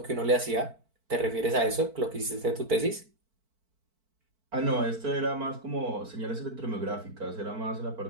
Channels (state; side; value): late; left; 4.5 ms